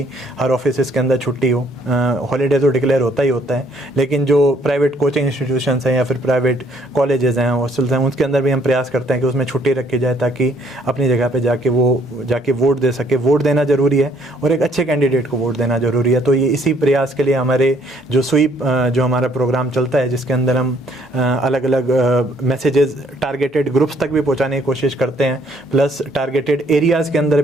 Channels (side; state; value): both; normal; correlation 0.64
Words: हर ऑफिस के अंदर छुट्टी हो। हॉलीडे तो डिक्लेयर होता ही होता है, लेकिन जो प्राइवेट कोचिंग इंस्टीट्यूशंस हैं या फिर प्राइवेट कॉलेजेस हैं, हॉस्टल्स हैं, उसके अंदर भी हम प्रयास करते हैं कि उसमें छुट्टी रखी जाए ताकि अपनी जगह पे जाके वोट दे सके। वोट देना ज़रूरी है और एक अच्छे कैंडिडेट को वोट देना ज़रूरी है। तो ये इसी प्रयास के लिए हमारे जो स्वीप जो हमारा प्रोग्राम चलता है, जिसके अंदर हम अलग अलग मैसेजेस टारगेटेड ग्रुप्स तक भी पहुँचाने की कोशिश करते हैं, प्लस टारगेटेड एरियाज़ के अंदर